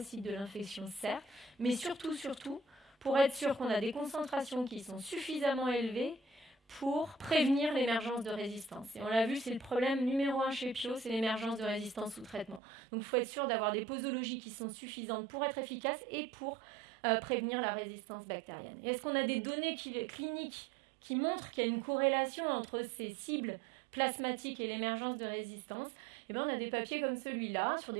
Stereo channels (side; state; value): left; drops out; at 12.6 s